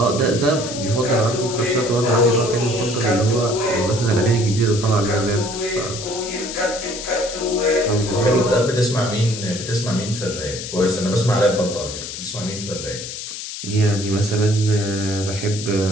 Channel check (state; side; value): noise; left; hiss, 8 dB below the sound